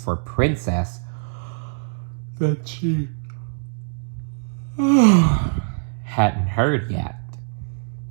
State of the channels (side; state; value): left; silent; 63 dB below the other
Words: Princess that she hadn't heard yet.